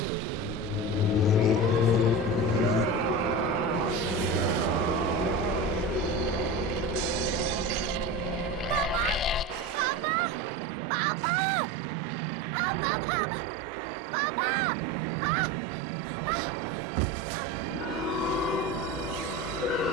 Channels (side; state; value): both; normal; correlation 0.26